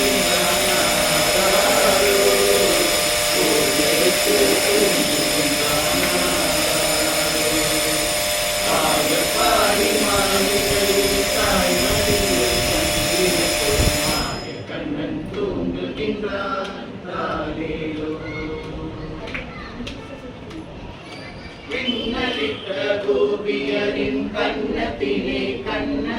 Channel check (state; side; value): identical; both; correlation 1.00